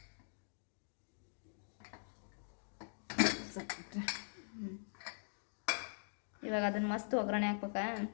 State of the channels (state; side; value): silent; right; digital silence